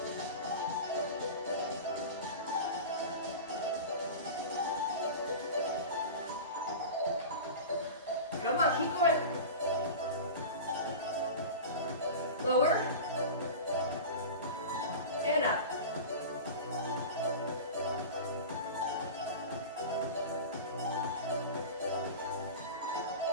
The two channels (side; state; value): both; inverted; correlation -0.31